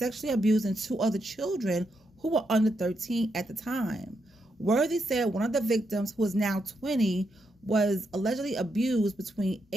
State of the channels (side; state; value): both; normal; correlation 0.82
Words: abusing 2 other children who were under 13 at the time. Worthy said one of the victims, who is now 20, was allegedly abused between